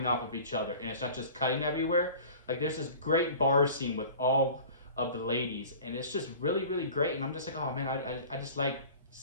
off of each other, and it's not just cutting everywhere. Like, there's this great bar scene with all of the ladies, and it's just really, really great. And I'm just like, oh man, I just like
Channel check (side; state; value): both; inverted; correlation -0.42